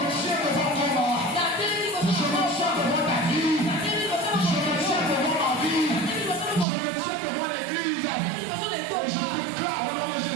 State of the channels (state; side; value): drops out; left; at 6.7 s